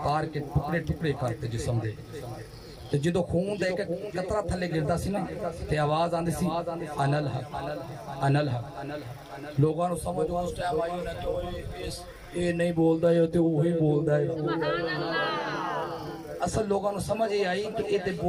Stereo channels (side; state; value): both; identical; correlation 1.00